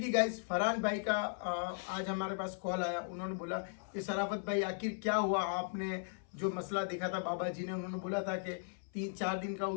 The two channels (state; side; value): silent; right; 53 dB below the other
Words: गाइस फरहान भाई का आज हमारे पास कॉल आया। उन्होंने बोला कि शराफत भाई आखिर क्या हुआ, आपने जो मसला देखा था बाबा जी ने, उन्होंने बोला था कि 3-4 दिन का